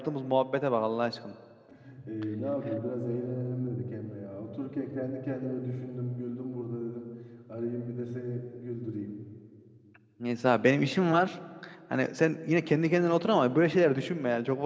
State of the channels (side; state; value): both; identical; correlation 1.00